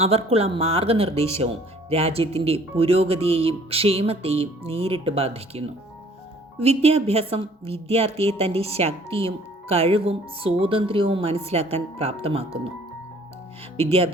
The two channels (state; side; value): normal; both; correlation 0.56